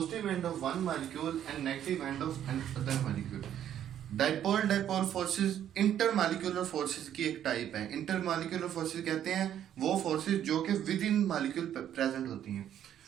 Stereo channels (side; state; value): left; quieter; 10.4 dB